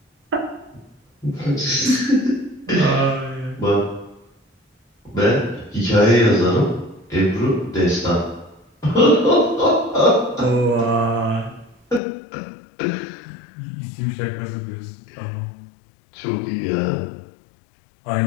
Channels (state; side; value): drops out; right; at 12.0 s